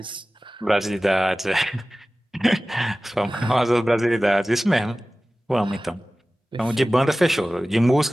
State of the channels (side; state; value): both; normal; correlation 0.97